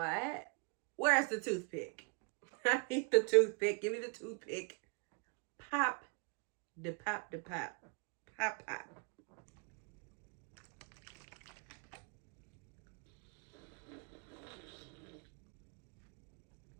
Where's the toothpick? I need the toothpick. Give me the toothpick. Pop. The pop, the pop. Pop, pop.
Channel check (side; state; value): left; quieter; 36.3 dB